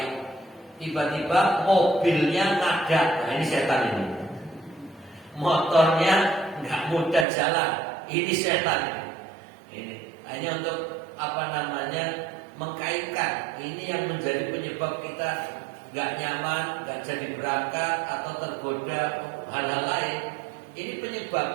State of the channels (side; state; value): left; drops out; at 7.2 s